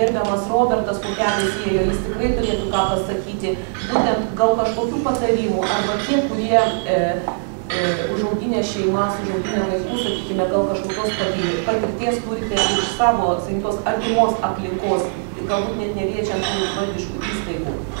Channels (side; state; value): left; silent; digital silence